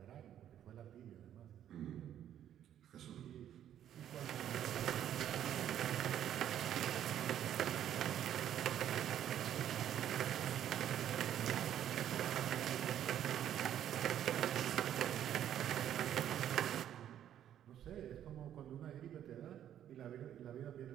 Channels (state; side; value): quieter; left; 10.6 dB